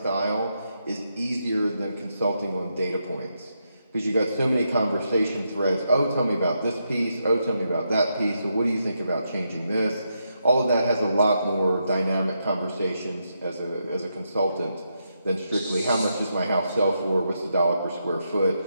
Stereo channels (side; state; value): both; inverted; correlation -0.82